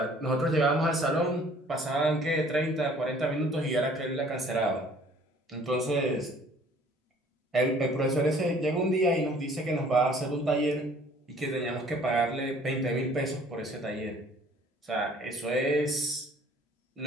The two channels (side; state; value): both; normal; correlation 0.55